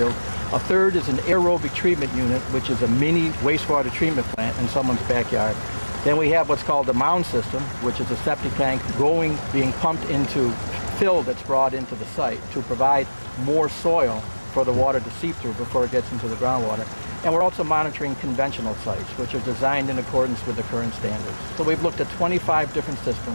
A third is an aerobic treatment unit, which is a mini wastewater treatment plant in someone's backyard. Then we have what's called the mound system, which is a septic tank being pumped into fill that's brought into the site to provide more soil for the water to seep through before it gets into the groundwater. And we're also monitoring conventional sites, which are designed in accordance with the current standards. So we've looked at 25 different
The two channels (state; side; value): inverted; both; correlation -1.00